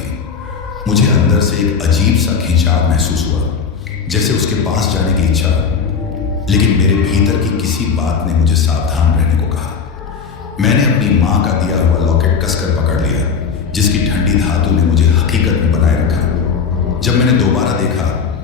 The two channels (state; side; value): quieter; right; 6.0 dB